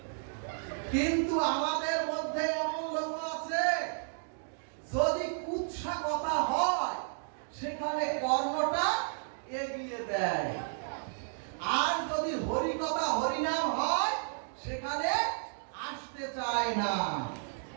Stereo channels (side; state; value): left; silent; digital silence